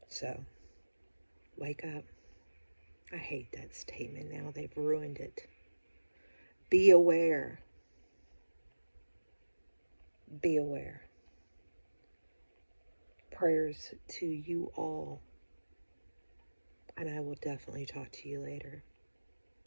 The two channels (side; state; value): both; inverted; correlation -1.00